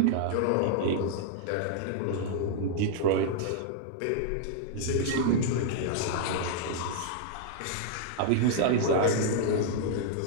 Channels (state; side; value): different; both; correlation -0.01